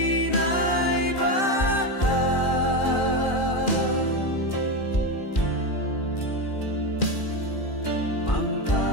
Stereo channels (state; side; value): late; right; 2.4 ms